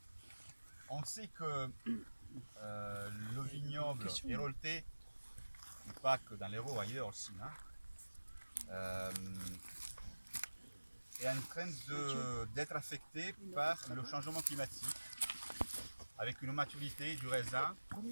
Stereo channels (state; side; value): inverted; both; correlation -1.00